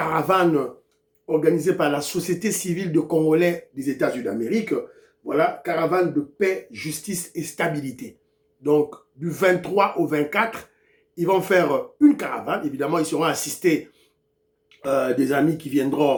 organisée par la société civile de Congolais des États-Unis d'Amérique. Voilà, caravane de paix, justice et stabilité. Donc, du 23 au 24, ils vont faire une caravane. Évidemment, ils seront assistés des amis qui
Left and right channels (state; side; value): identical; both; correlation 1.00